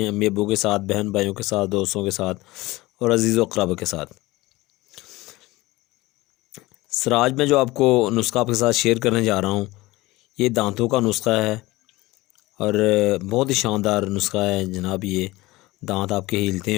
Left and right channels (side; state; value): right; quieter; 19.9 dB